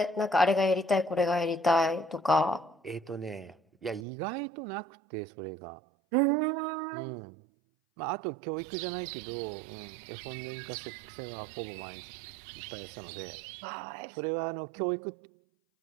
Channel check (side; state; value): left; drops out; at 4.0 s